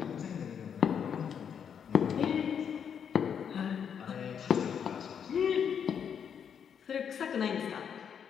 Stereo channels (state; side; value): quieter; right; 7.7 dB